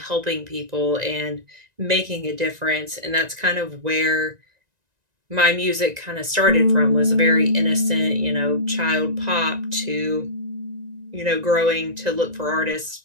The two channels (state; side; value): late; left; 1.9 ms